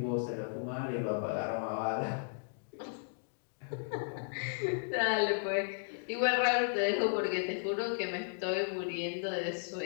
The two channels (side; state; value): right; silent; digital silence